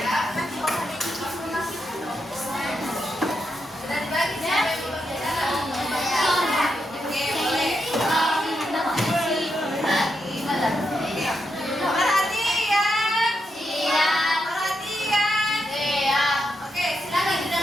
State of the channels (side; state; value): both; normal; correlation 0.83